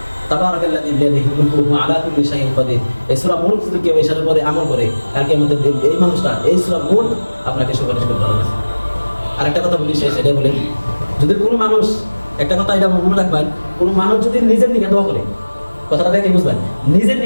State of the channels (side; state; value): both; inverted; correlation -1.00